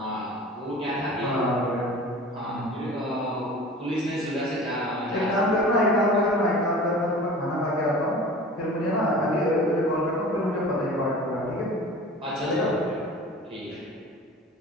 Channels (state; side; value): normal; both; correlation 0.40